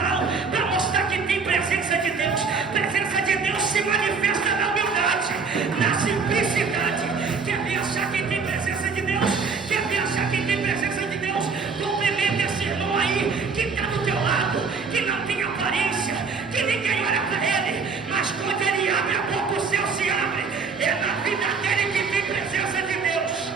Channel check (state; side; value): quieter; left; 5.1 dB